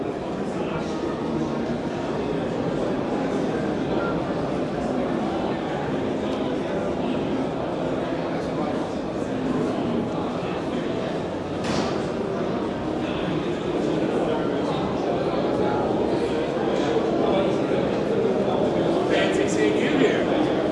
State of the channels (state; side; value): identical; both; correlation 1.00